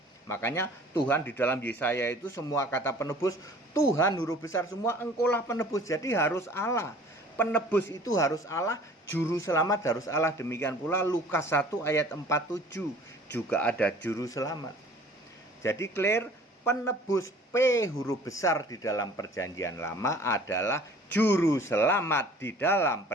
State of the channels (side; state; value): both; normal; correlation 0.50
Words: Makanya Tuhan di dalam Yesaya itu semua kata penebus Tuhan huruf besar semua, engkaulah penebus. Jadi harus Allah. Penebus itu harus Allah, juru selamat harus Allah. Demikian pula Lukas 1 ayat 47 juga ada juru selamat. Jadi clear, penebus P huruf besar di dalam Perjanjian Lama adalah juru selamat di dalam